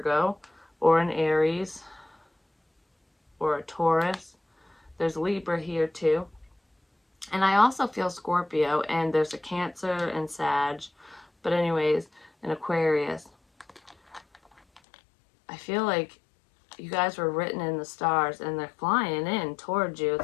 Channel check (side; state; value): right; drops out; at 14.8 s